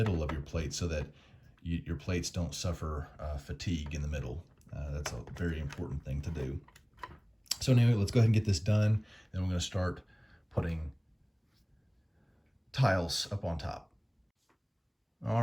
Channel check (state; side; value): identical; both; correlation 1.00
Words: of your plate so that your plates don't suffer fatigue in the middle. That's a very important thing to do. So anyway, let's go ahead and get this done. Then we're going to start putting tiles up on top.